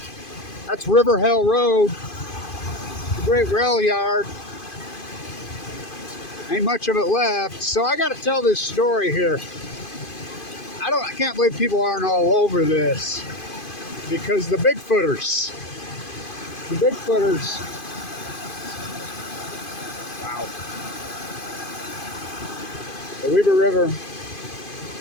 That's River Hill Road, the great rail yard. Ain't much of it left. So I got to tell this story here. I can't believe people aren't all over this, because the Bigfooters, wow, the Weber River.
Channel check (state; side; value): late; right; 2.5 ms